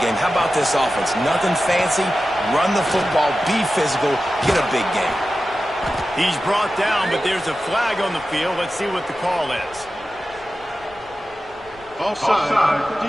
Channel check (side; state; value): left; noise; rumble, 26 dB below the sound